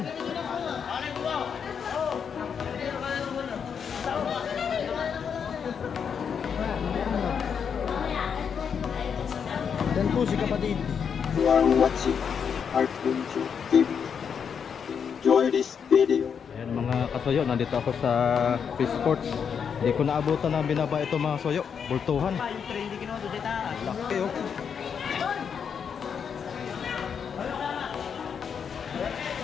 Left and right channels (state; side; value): quieter; right; 7.0 dB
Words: Dan po si kapatid. You are watching Artpunju TV. Enjoy this video. Ayan mga kasoyo, nandito ako sa Fish Sports. Hindi ko naabutan na binaba ito mga soyo. Bultuhan. Laki oh.